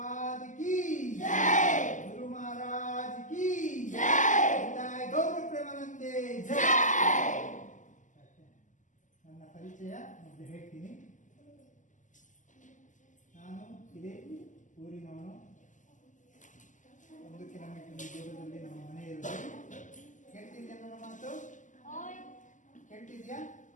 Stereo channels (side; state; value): right; late; 0.37 ms